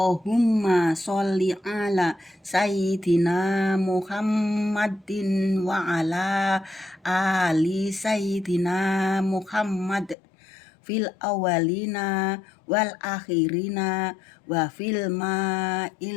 sholli ala sayyidina Muhammadin wa ala ali sayyidina Muhammad fil awalina wal akhirina wa fil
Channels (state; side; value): drops out; right; at 10.2 s